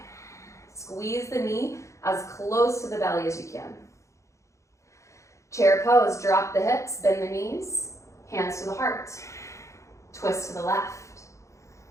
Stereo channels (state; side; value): late; right; 0.15 ms